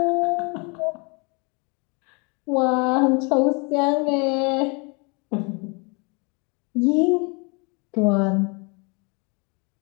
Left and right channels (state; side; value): quieter; right; 31.8 dB